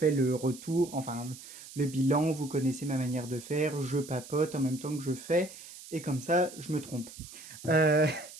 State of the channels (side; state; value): right; noise; hiss, 16 dB below the sound